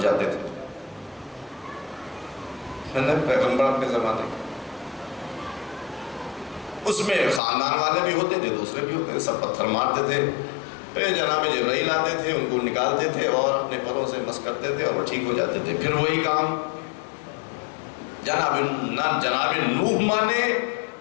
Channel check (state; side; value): drops out; right; at 7.4 s